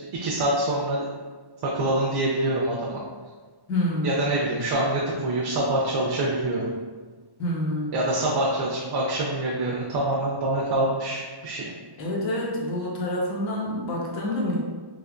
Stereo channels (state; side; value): late; left; 1.1 ms